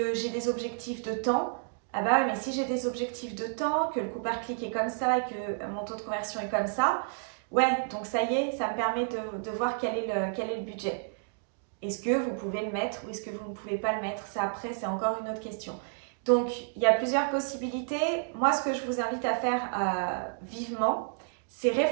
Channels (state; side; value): silent; left; digital silence